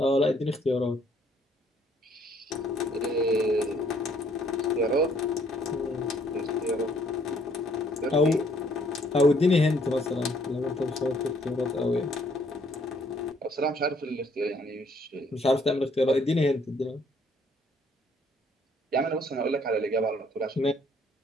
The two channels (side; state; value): both; normal; correlation 0.64